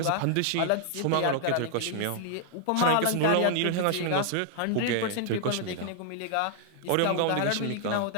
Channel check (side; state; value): both; different; correlation 0.00